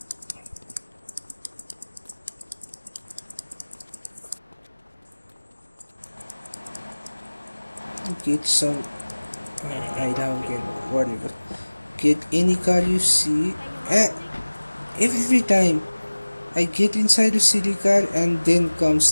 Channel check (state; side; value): inverted; both; correlation -1.00